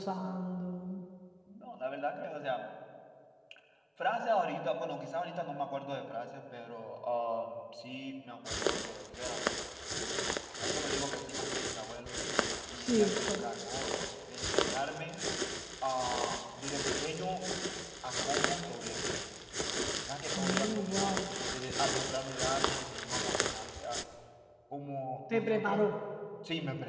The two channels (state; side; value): identical; both; correlation 1.00